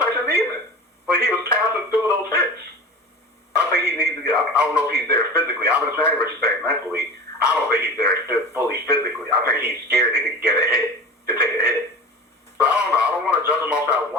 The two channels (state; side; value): normal; both; correlation 0.34